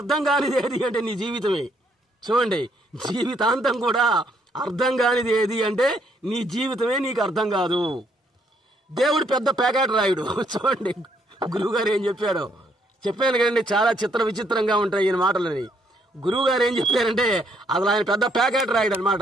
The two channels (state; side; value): normal; both; correlation 0.70